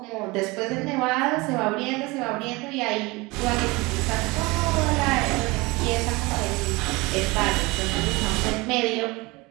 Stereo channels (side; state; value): left; quieter; 23.7 dB